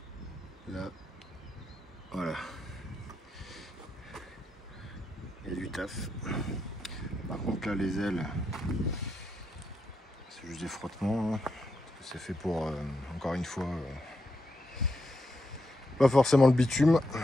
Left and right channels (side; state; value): both; normal; correlation 0.83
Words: Là, voilà. Il y a du taf. Par contre là les ailes, c'est juste des frottements. Hein. C'est fait pour, encore une fois, pas forcément le bitume.